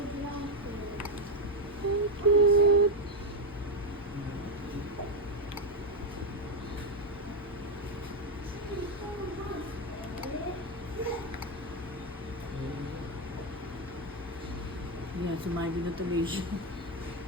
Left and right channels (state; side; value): normal; both; correlation 0.05